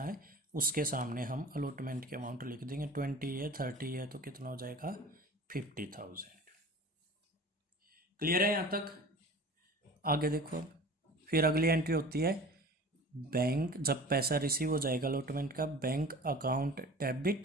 है उसके सामने हम अलॉटमेंट के अमाउंट लिख देंगे। 20 है, 30 है, तो कितना हो जाएगा 50,000। क्लियर है यहाँ तक। आगे देखो, फिर अगली एंट्री होती है बैंक, जब पैसा रिसीव हो जाएगा अलॉटमेंट का, bank account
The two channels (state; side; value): normal; both; correlation 0.39